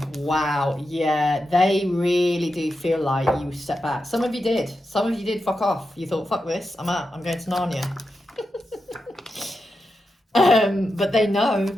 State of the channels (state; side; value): normal; both; correlation 0.88